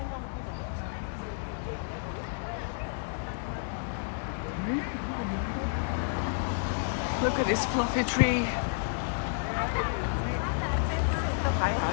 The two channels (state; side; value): silent; right; digital silence